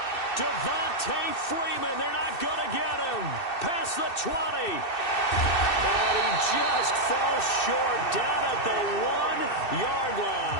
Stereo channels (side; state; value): right; late; 2.6 ms